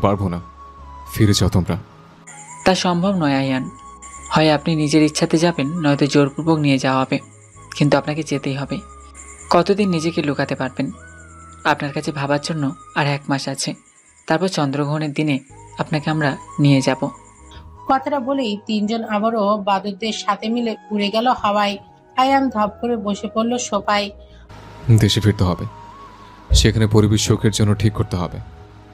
পারবো না। ফিরে যাও তোমরা। তা সম্ভব নয় আইয়ান। হয় আপনি নিজের ইচ্ছাতে যাবেন, নয়তো জোরপূর্বক নিয়ে যাওয়া হবে। কিন্তু আপনাকে যেতেই হবে। কতদিন নিজেকে লুকাতে পারবেন? আপনার কাছে ভাবার জন্য আর 1 মাস আছে, তারপর চন্দ্রগ্রহণের দিনে আপনাকে আমরা নিয়ে যাব। কথাটা বলেই তিনজন আবারও বাদুরদের সাথে মিলে উড়ে গেল হাওয়ায়। আয়ান ধপ করে বসে পড়ল সোফায়। দেশে ফিরতে হবে, সেখানে পরিবেশ শোকের জন্য ঠিক করতে হবে,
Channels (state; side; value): identical; both; correlation 1.00